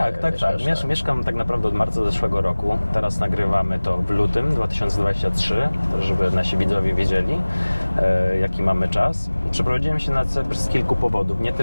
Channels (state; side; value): inverted; both; correlation -1.00